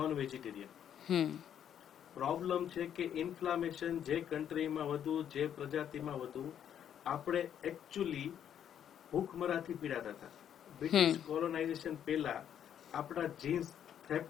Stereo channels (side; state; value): right; quieter; 9.5 dB